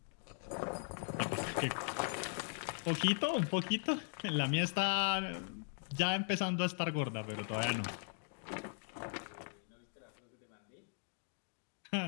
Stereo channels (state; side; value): silent; right; 52 dB below the other